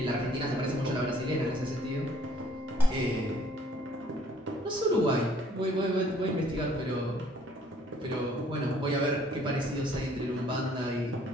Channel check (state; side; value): normal; both; correlation 0.60